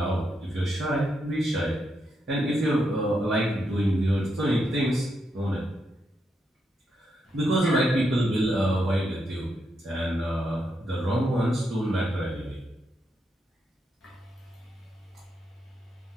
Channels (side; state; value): both; normal; correlation 0.82